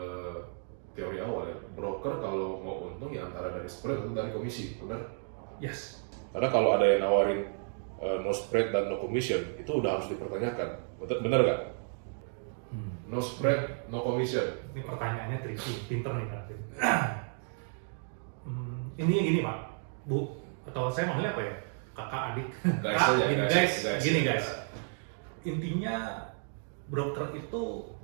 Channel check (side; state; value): left; silent; 56 dB below the other